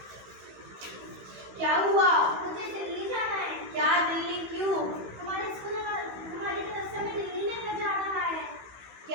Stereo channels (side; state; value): left; late; 15 ms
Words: क्या हुआ? मुझे दिल्ली जाना है। क्या दिल्ली क्यों? हमारे तरफ से हमें दिल्ली लेकर जा रहा है।